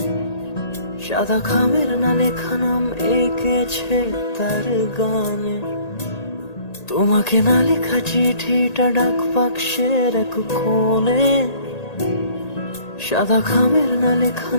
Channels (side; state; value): right; late; 1.8 ms